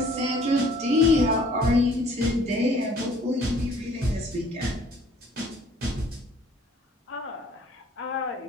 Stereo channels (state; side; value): normal; both; correlation 0.56